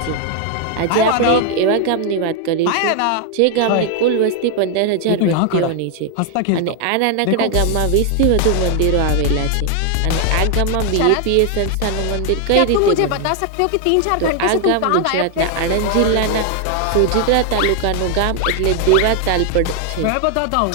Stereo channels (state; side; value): different; both; correlation 0.00